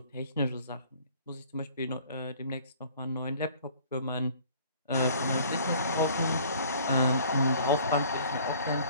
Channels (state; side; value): inverted; both; correlation -0.54